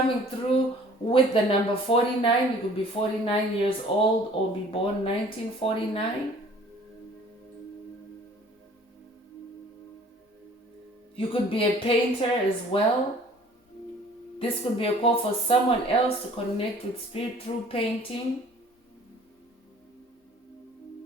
through with the number 49. You could be 49 years old or be born 1949. You could be a painter as well. This could be a call for someone else to connect with spirit through painting.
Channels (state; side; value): normal; both; correlation 0.52